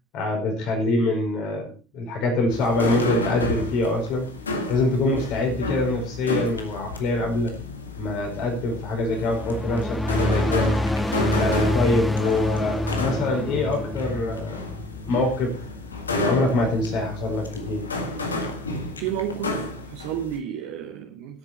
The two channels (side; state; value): both; normal; correlation 0.48